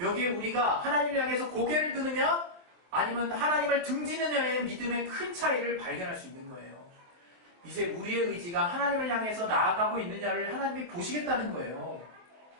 우리가 하나님을 향해서 고개를 드느냐 아니면 하나님을 등지느냐의 믿음의 큰 차이를 발견할 수 있는 거예요. 이제 우리의 의지가 하나님을 향해서 나아가고 있느냐를 하나님이 보시겠다는 거예요.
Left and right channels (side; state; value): left; late; 23 ms